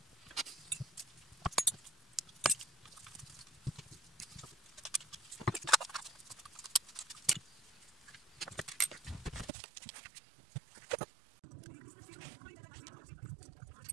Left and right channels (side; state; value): left; drops out; at 9.5 s